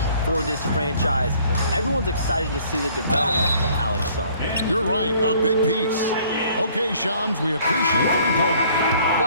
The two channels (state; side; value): inverted; both; correlation -0.58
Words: for this franchise. Everyone's excited to see the development of Alex Sarr. You're right, a big piece. Okay, Shams, we appreciate the reporting.